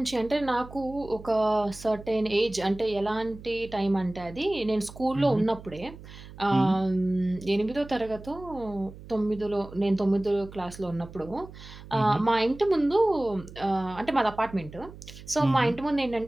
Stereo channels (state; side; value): noise; right; hum, 16 dB below the sound